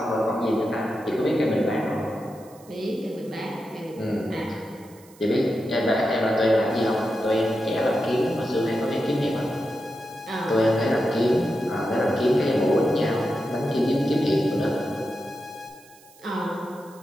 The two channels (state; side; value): noise; right; hiss, 26 dB below the sound